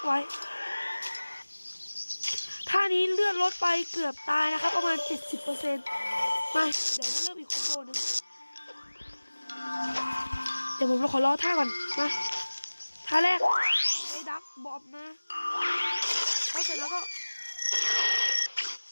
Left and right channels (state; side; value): inverted; both; correlation -1.00